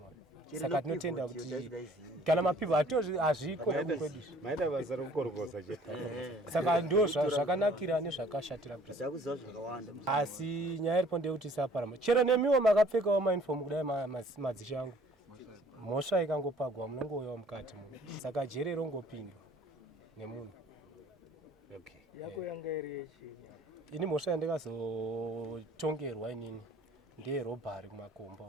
Saka tinotenda kuti kana mapipa hazviko kwedu. Maida basa rokukorokoza chete. Saka ndo zvakanakira nezvakashatira Ndakuziva zvakawanda. asi nyaya iripo ndeyekuti isaparama. Chero nemiwo makapfekawo mauniform kudai madzishe angu. Mhosva ikangopagwa munongouyawo mukati muno. Saka jeri rongopindwa nemunhu. Okay. Yako yanga iri yechi. Ini mhosva yandikazotongerwa inini ndeyerobhari kumakomba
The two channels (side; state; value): both; normal; correlation 0.55